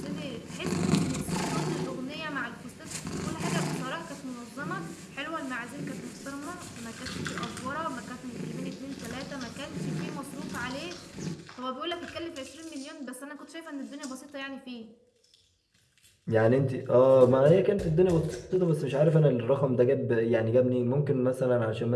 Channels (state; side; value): identical; both; correlation 1.00